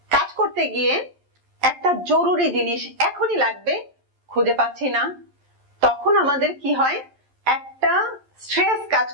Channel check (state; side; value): late; left; 11 ms